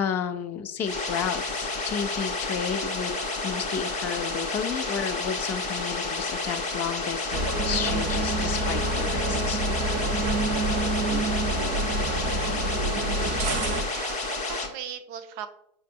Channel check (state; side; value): late; left; 4.5 ms